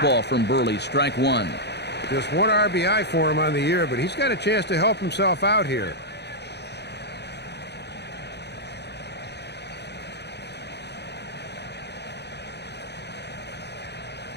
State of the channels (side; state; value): right; late; 0.49 ms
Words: from Burley, strike one. Just one RBI for him on the year, but he's got a chance to help himself out here.